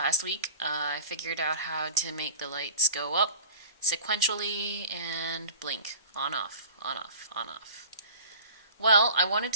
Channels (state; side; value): inverted; both; correlation -0.42